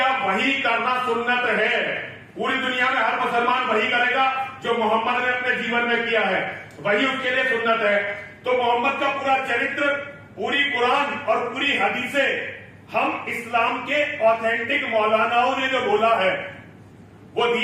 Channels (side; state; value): both; identical; correlation 1.00